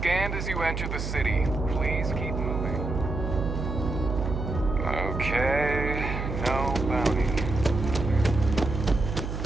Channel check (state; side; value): noise; right; hum, 4 dB below the sound